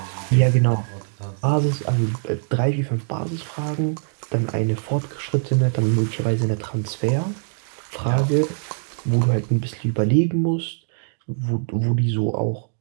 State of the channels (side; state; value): left; silent; digital silence